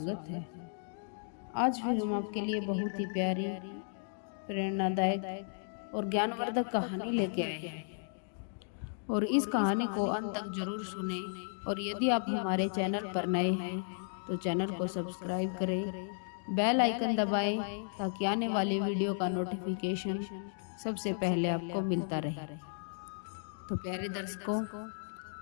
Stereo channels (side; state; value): right; silent; digital silence